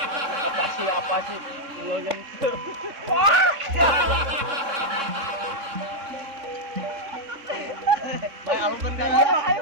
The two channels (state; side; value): late; left; 3.6 ms